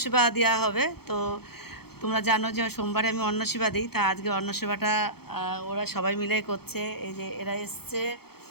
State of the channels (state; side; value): late; right; 0.96 ms